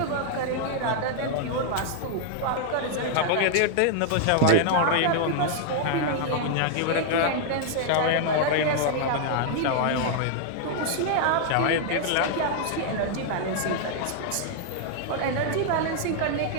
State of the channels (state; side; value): different; both; correlation 0.00